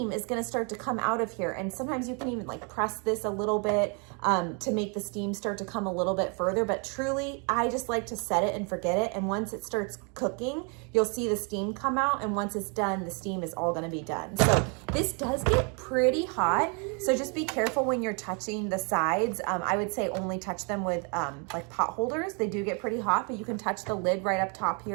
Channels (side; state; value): left; quieter; 35.9 dB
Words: is gonna start to come out of here. And sometimes you can even like press this a little bit to make the steam start to come a little bit further, but truly, I just like to set it and forget it. And once it starts cooking, you'll see the steam come out, and once it's done, the steam is all gonna be done. So this does get pretty hot, so just be careful when you're touching the sides. I would say only touch them with like pot holders. They do get pretty hot, but you can touch the lid right up top